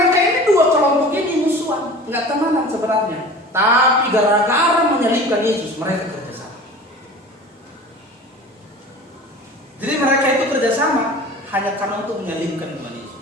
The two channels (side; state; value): both; normal; correlation 0.39